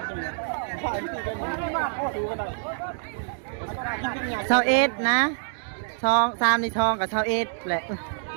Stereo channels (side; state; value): left; silent; digital silence